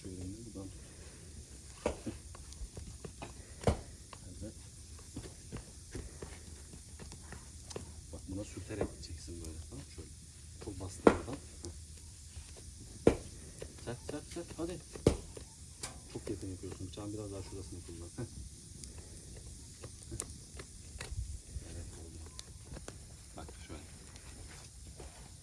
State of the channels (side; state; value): both; identical; correlation 1.00